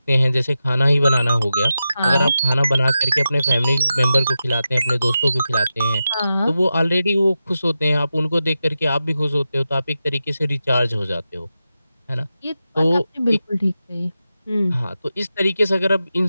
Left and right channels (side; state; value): both; inverted; correlation -0.91